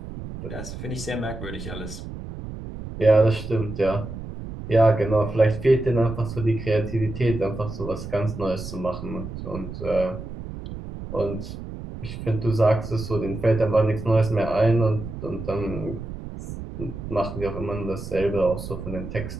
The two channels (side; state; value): right; noise; rumble, 9 dB below the sound